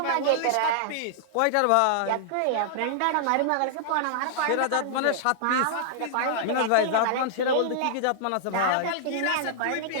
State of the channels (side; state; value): both; different; correlation -0.01